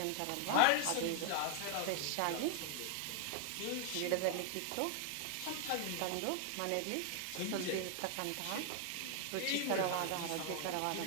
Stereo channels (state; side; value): different; both; correlation 0.00